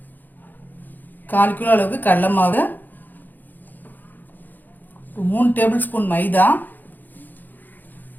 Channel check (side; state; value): right; late; 0.086 ms